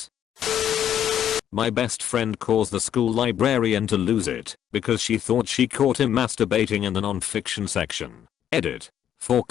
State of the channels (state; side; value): quieter; right; 10.1 dB